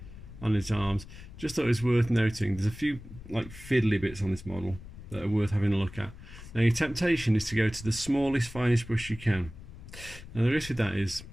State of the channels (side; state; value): left; noise; rumble, 15 dB below the sound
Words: on his arms. Just thought it was worth noting there's a few like fiddly bits on this model that are worth having a look at. Now your temptation is to go to the smallest, finest brush you can. Now the risk with that is,